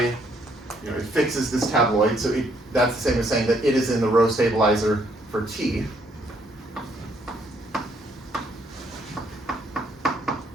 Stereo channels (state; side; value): normal; both; correlation 0.68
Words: you know, it fixes this tabloid, so that's the same as saying that it is in the row stabilizer for t.